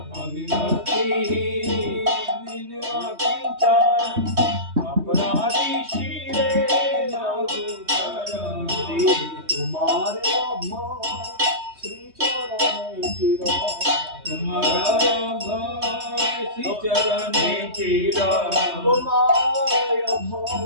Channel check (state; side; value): late; left; 3.2 ms